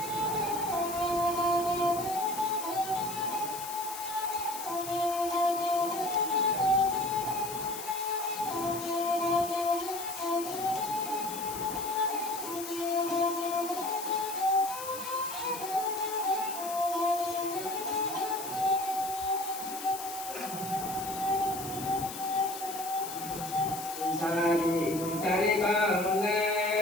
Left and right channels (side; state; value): left; noise; hiss, 9 dB below the sound